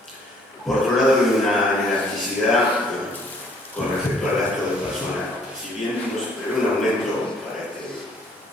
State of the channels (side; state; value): both; normal; correlation 0.61